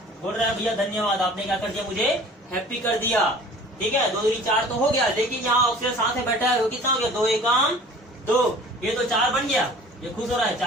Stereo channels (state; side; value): normal; both; correlation 0.46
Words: बोल रहा है भैया धन्यवाद, आपने क्या कर दिया, मुझे हैप्पी कर दिया, ठीक है। 2 दूनी 4 तो हो गया। लेकिन यहाँ ऑक्सीजन साथ में बैठा है, वो कितना हो गया, 2 एकम 2। ये तो 4 बन गया, ये खुश हो रहा है,